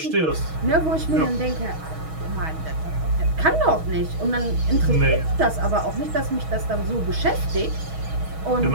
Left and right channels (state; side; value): late; left; 6.3 ms